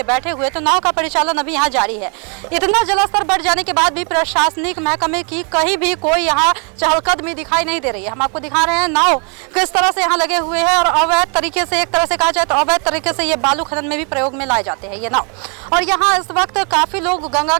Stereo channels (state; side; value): quieter; left; 37.1 dB